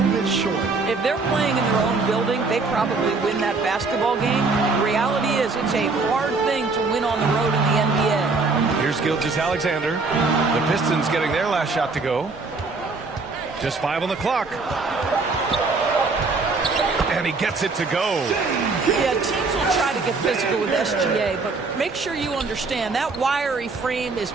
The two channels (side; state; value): left; quieter; 4.0 dB